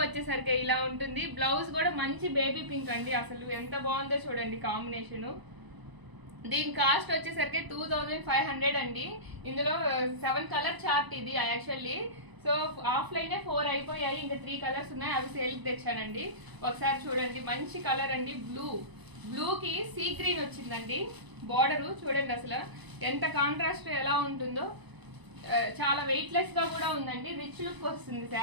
వచ్చేసరికి ఇలా ఉంటుంది. బ్లౌజ్ కూడా మంచి బేబీ పింక్ అండి. అసలు ఎంత బాగుందో చూడండి కాంబినేషన్. దీని కాస్ట్ వచ్చేసరికి 2500 అండి. ఇందులో 7 కలర్ చార్ట్ ఇది యాక్చువల్లీ. సో ఆఫ్లైన్ 4 అయిపోయాయి, ఇంకా 3 కలర్స్ ఉన్నాయి, అవి సేల్కి తెచ్చానండి. ఒకసారి చూడండి, మంచి కలర్ అండి. బ్లూకి సీ గ్రీన్ వచ్చిందండి. బార్డర్ చూడండి అసలు ఎంత కాంట్రాస్ట్ ఎలా ఉంటుందో. చాలా వెయిట్లెస్ గా కూడా ఉందండి. రిచ్ లుక్ వస్తుంది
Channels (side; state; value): left; late; 1.0 ms